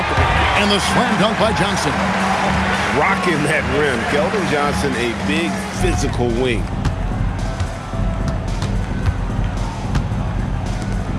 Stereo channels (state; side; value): identical; both; correlation 1.00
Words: And the slam dunk by Johnson. Rocking that rim. Keldon Johnson, a big physical wing.